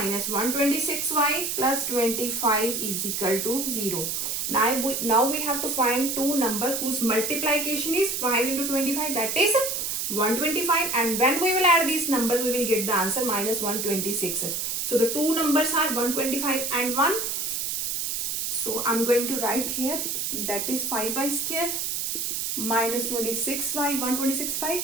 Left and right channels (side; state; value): right; noise; hiss, 1 dB below the sound